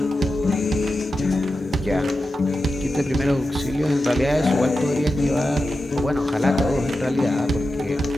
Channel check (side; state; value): both; normal; correlation 0.91